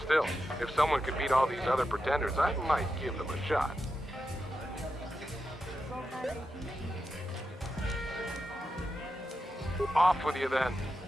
Still, if someone could beat all these other pretenders, I might give them a shot. Off with you then.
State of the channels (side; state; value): both; normal; correlation 0.88